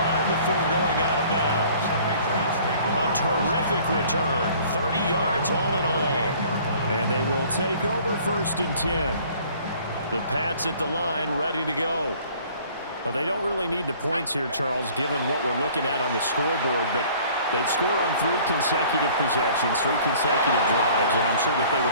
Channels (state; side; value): inverted; both; correlation -0.53